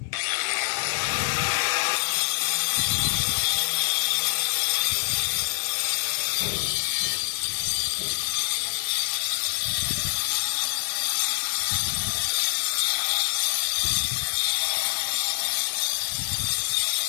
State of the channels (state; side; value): silent; right; digital silence